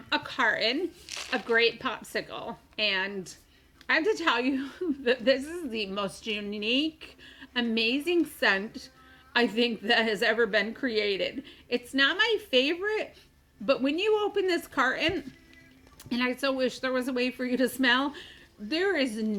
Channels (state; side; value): identical; both; correlation 1.00